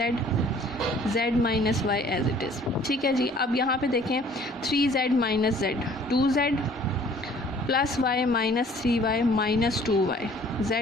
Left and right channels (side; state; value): both; normal; correlation 0.54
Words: z minus y as it is. ठीक है जी, अब यहाँ पे देखें 3z minus z, 2z plus y minus 3y minus 2y,